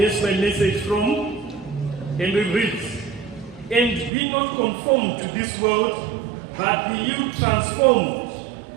my message from, and it reads, and be not conformed to this world, but be you transformed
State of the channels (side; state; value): left; drops out; at 4.1 s